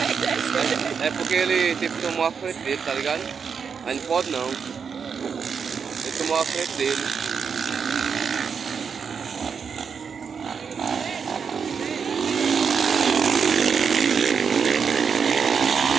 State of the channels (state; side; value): quieter; left; 6.3 dB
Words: É porque ele tipo tomou a frente dele, tá ligado? Aí não pode não. Ele tomou a frente dele.